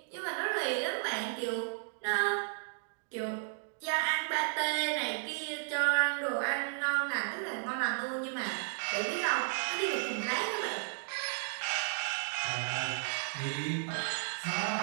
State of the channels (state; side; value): silent; left; digital silence